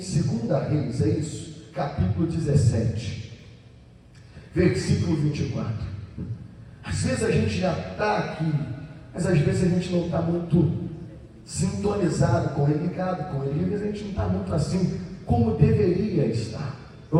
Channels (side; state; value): both; identical; correlation 1.00